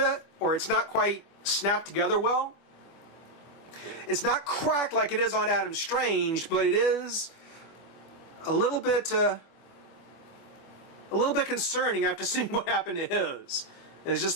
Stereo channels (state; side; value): late; right; 25 ms